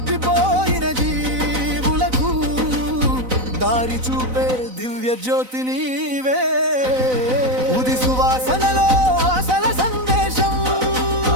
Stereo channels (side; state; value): left; late; 4.0 ms